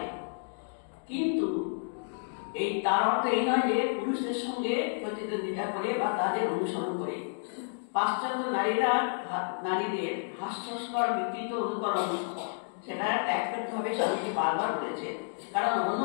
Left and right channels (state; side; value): silent; right; digital silence